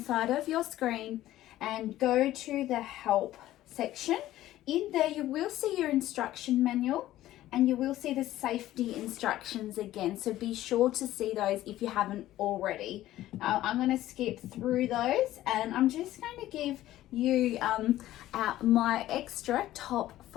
side of your screen, and go to the help section. In there you will see your instruction manual and you will see the safety instructions again, so be sure to see those if you haven't already. I'm going to skip through those and I'm just going to give you my extra top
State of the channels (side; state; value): right; quieter; 14.5 dB